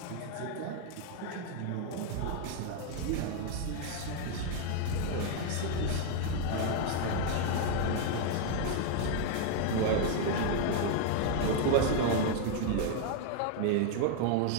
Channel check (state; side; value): different; both; correlation 0.00